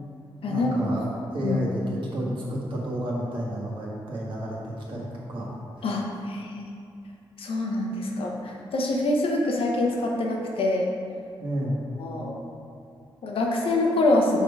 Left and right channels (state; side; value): normal; both; correlation 0.70